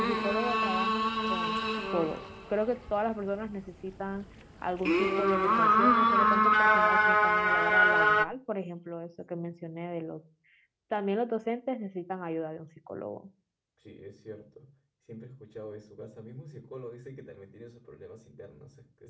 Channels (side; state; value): both; identical; correlation 1.00